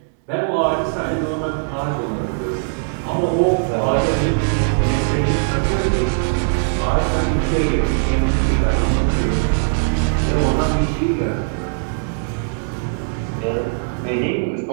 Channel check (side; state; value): left; silent; 66 dB below the other